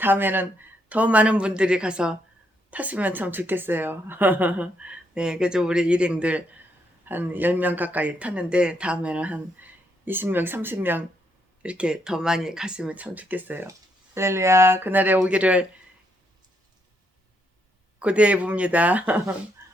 더 많은 분들이 가서 탔으면 참 좋겠어요. 네, 그래서 우리 일행들 한 10명 가까이 탔는데 다음에는 한 20명, 30명 이렇게 더 많이 갔으면 참 좋겠어요. 할렐루야, 그날에 오기를 고대해 봅니다.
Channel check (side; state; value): both; normal; correlation 0.76